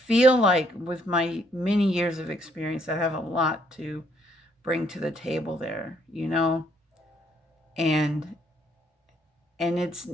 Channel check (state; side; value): normal; both; correlation 0.69